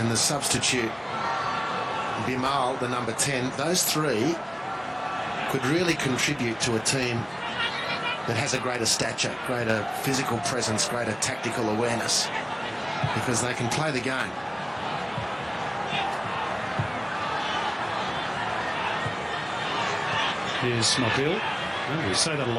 the substitute Bimal, the number 10, those 3 could really contribute to a team that has a greater stature, greater physical presence, greater tactical awareness, because they can play the game. Here's Mobile. Well, we say that a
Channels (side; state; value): both; identical; correlation 1.00